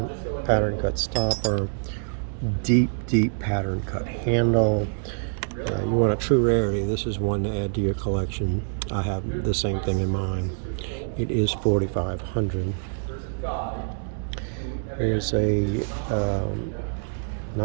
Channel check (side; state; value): left; silent; digital silence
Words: pattern cut stopper, deep pattern cut handle. You want a true rarity. This is one to add to your collection. I have the same thing in mind. It is 4,500. Here's a